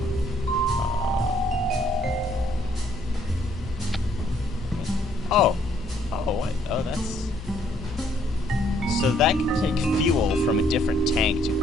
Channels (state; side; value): normal; both; correlation 0.67